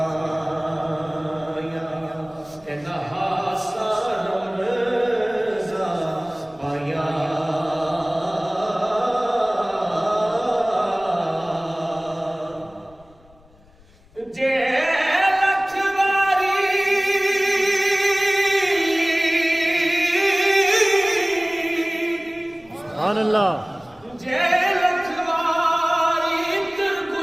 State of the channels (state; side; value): noise; left; rumble, 28 dB below the sound